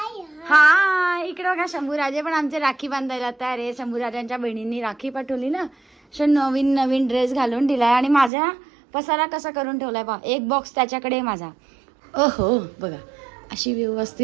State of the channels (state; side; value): drops out; left; at 8.3 s